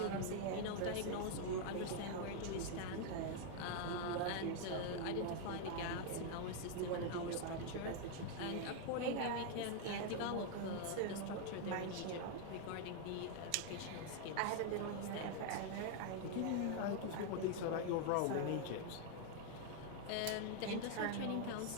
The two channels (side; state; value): both; different; correlation 0.00